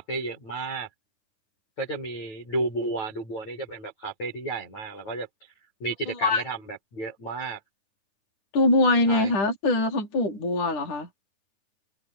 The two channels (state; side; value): late; right; 9.5 ms